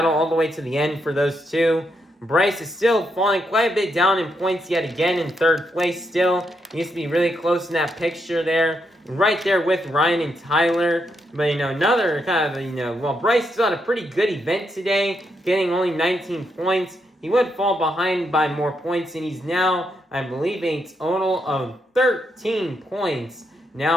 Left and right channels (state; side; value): normal; both; correlation 0.80